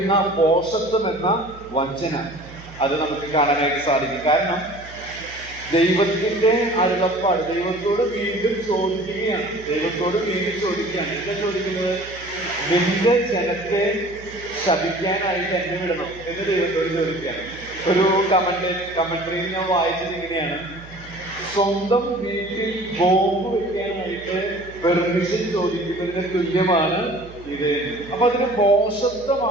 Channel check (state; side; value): noise; right; hum, 18 dB below the sound